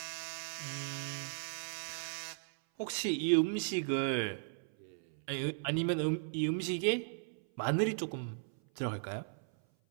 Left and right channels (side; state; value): left; silent; 53 dB below the other